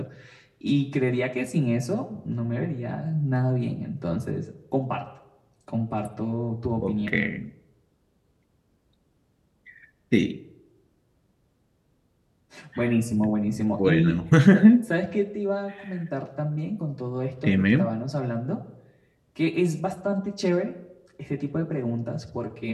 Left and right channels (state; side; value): identical; both; correlation 1.00